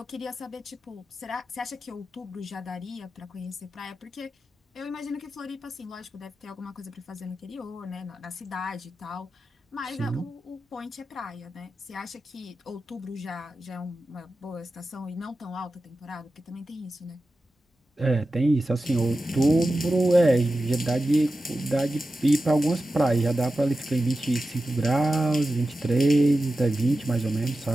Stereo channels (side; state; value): both; normal; correlation 0.93